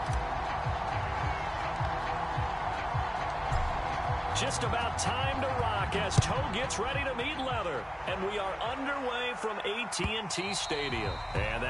Just about time to rock as toe gets ready to meet leather. And we are underway from AT&T Stadium. And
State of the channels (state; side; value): identical; both; correlation 1.00